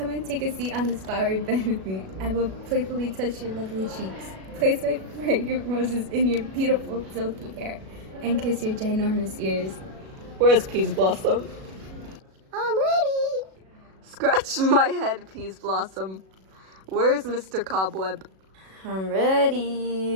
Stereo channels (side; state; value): left; late; 37 ms